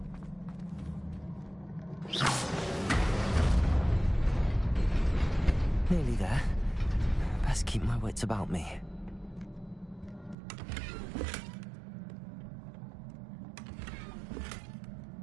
wits about me.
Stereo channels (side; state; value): left; drops out; at 10.4 s